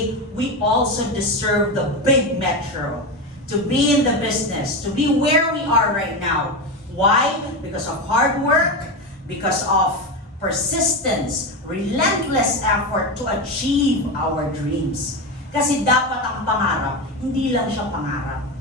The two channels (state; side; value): normal; both; correlation 0.17